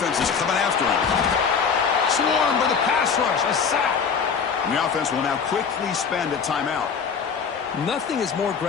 is coming after him. Swarmed by the pass rush. A sack. And the offense will now quickly spend a timeout. Nothing is more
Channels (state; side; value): quieter; right; 6.2 dB